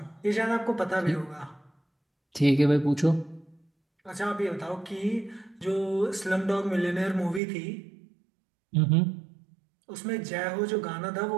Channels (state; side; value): drops out; left; at 7.4 s